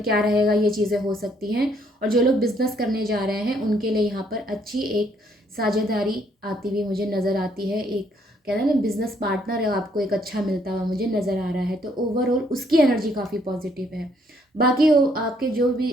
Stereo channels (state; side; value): normal; both; correlation 0.68